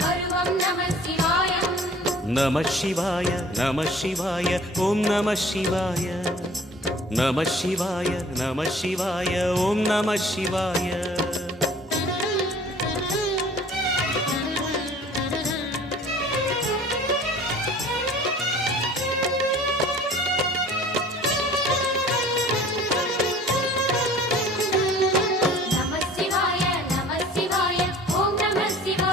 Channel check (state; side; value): normal; both; correlation 0.49